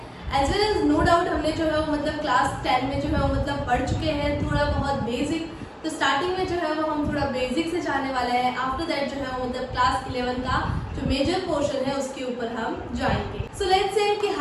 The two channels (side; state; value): both; identical; correlation 1.00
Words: As well as no doubt हमने जो है वो मतलब क्लास 10 में जो है वो मतलब पढ़ चुके हैं थोड़ा बहुत बेसिक। तो स्टार्टिंग में जो है वो हम थोड़ा बेसिक से जाने वाले हैं। आफ्टर दैट जो है वो मतलब क्लास 11 का जो मेजर पोर्शन है उसके ऊपर हम जाएंगे। सो लेट्स से कि